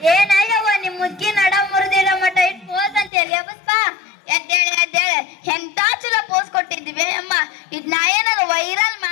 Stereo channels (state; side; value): drops out; right; at 3.1 s